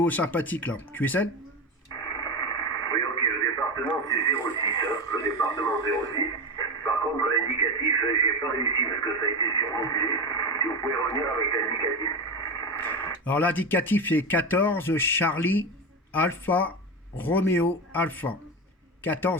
sympathique là. QSL. Oui, ok, le département c'est 06, hein, le département 06. Par contre, l'indicatif, j'ai pas réussi parce que ça a été surmodulé. Si vous pouvez revenir avec l'indicatif. Alors l'indicatif c'est 14 Charlie Alpha Romeo Alpha.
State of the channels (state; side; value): normal; both; correlation 0.19